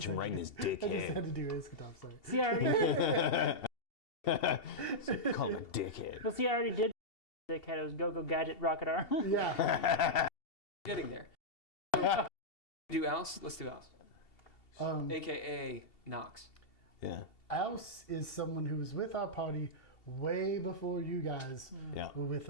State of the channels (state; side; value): late; right; 2.7 ms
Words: him right in his I just had dickhead. to do Iskatov, sorry. See, I already Call him a dickhead. well, see, I already did. Dickhead. It was Go-Go Gadget Rocket Arm. Yeah. Getting there. So, do Aus? Let's do Aus. AKA Nox. Yeah. Aus is someone who was with our party way before you guys Yeah. were with